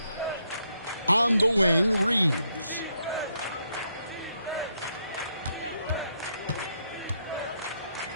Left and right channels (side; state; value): both; inverted; correlation -0.77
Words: On the wing, Reeves.